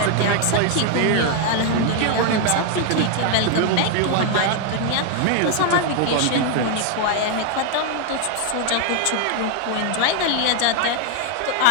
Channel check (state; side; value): different; both; correlation 0.00